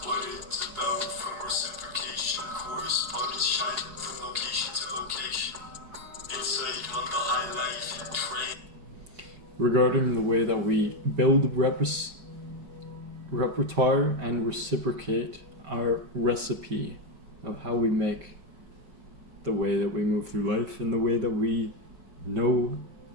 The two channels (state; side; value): late; left; 4.7 ms